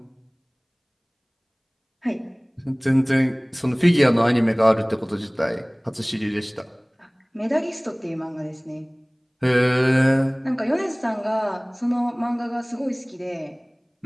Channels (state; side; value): identical; both; correlation 1.00